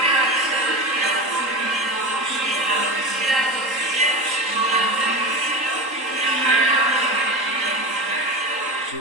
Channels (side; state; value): left; late; 3.8 ms